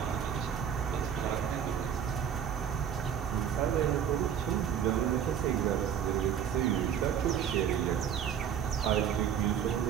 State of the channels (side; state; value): left; quieter; 8.6 dB